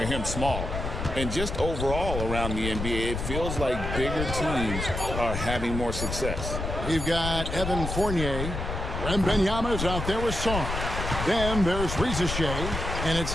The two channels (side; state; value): left; noise; rumble, 4 dB below the sound